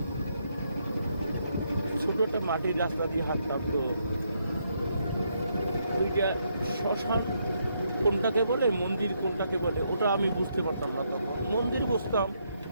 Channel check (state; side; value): inverted; both; correlation -0.76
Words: ছোটো একটা মাটির রাস্তা দিয়ে হাঁটতাম। তো ওইটা শ্মশান কোনটাকে বলে, মন্দির কোনটাকে বলে, ওটা আমি বুঝতে পারতাম না তখন। মন্দির বুঝতাম,